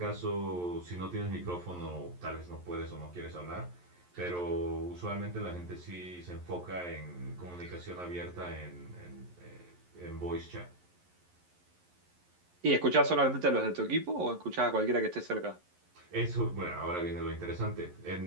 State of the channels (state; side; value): late; left; 11 ms